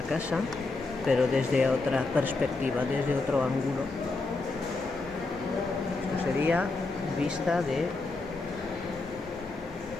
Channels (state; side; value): quieter; right; 3.5 dB